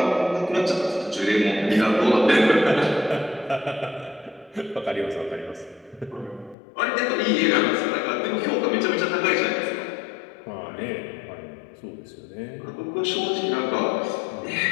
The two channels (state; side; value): drops out; right; at 6.6 s